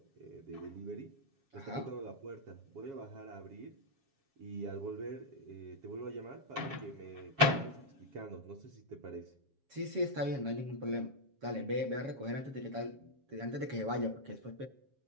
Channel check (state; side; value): late; left; 7.3 ms